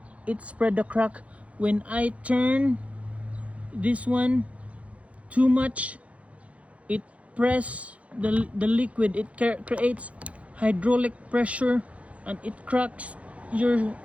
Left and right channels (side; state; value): left; late; 0.064 ms